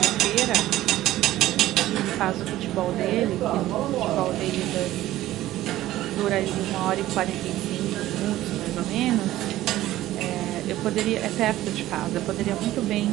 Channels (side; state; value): left; quieter; 15.0 dB